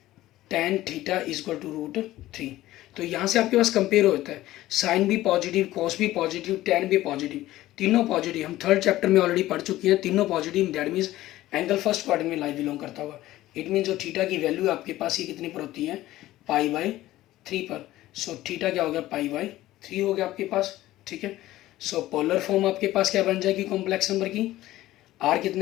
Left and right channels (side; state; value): right; quieter; 15.7 dB